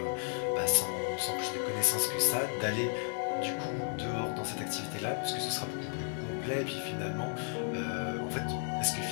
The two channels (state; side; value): silent; right; digital silence